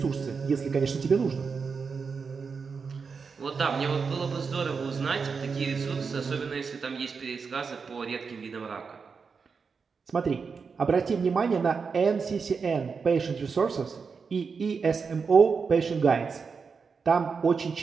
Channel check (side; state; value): left; quieter; 5.3 dB